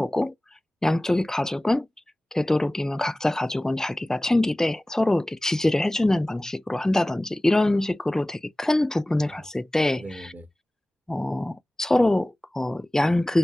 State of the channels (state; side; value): normal; both; correlation 0.98